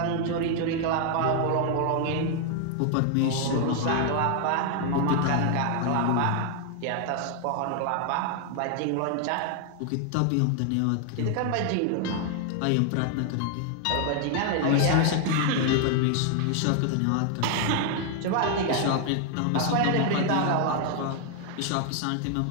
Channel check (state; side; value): different; both; correlation 0.00